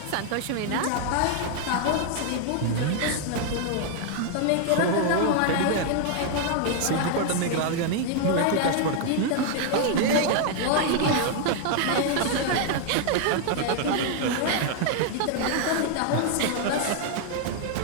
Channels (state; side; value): different; both; correlation 0.00